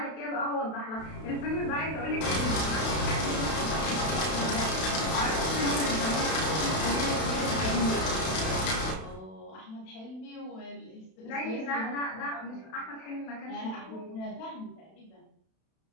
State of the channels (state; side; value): late; right; 32 ms